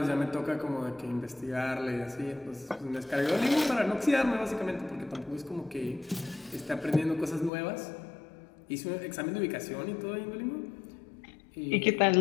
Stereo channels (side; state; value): right; drops out; at 7.5 s